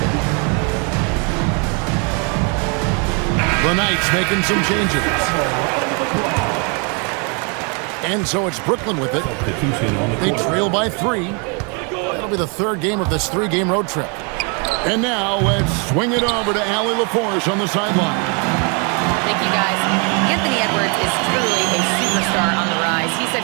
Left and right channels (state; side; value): quieter; left; 35.2 dB